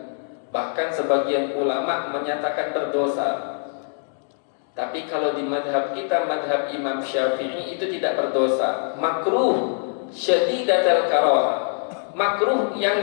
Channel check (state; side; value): silent; right; digital silence